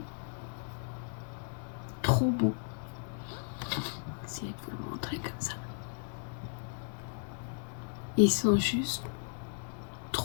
trop beaux. Je vais essayer de vous le montrer comme ça. Ils sont juste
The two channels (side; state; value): right; silent; 54 dB below the other